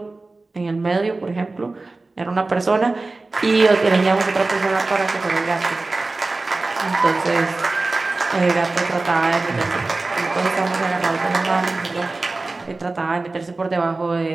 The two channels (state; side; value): quieter; left; 3.4 dB